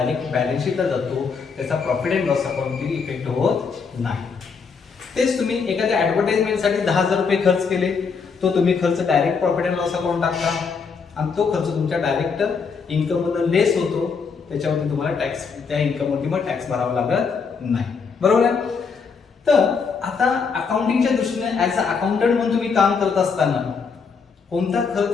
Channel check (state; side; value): quieter; right; 5.5 dB